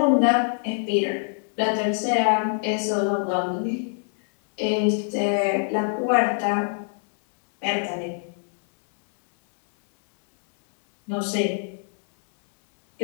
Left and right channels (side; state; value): right; silent; 63 dB below the other